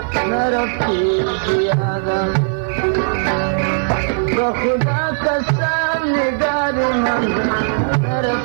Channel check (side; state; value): left; silent; digital silence